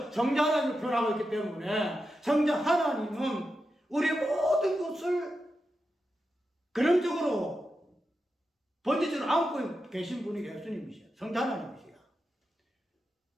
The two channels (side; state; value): both; normal; correlation 0.89